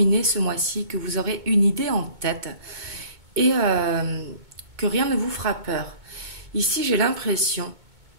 ce mois-ci, que vous aurez une idée en tête et que rien ne vous fera peur. Ici, j'ai l'impression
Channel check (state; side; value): late; left; 2.2 ms